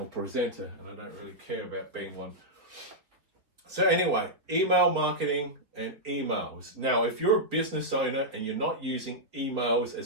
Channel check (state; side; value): late; left; 4.0 ms